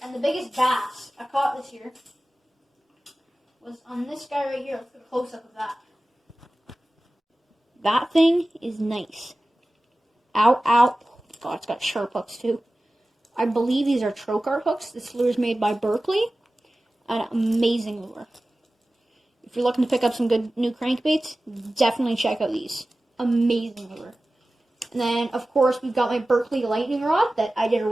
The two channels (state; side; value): normal; both; correlation 0.96